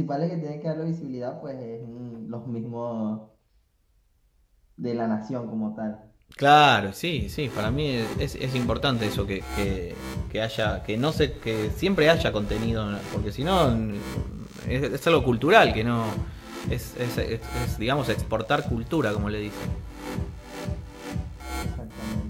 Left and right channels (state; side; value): identical; both; correlation 1.00